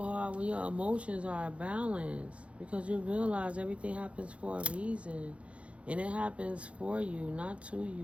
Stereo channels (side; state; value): left; late; 0.062 ms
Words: hard when your emotions are balanced. Because you realize everything happens for a reason. And it happens for you, not to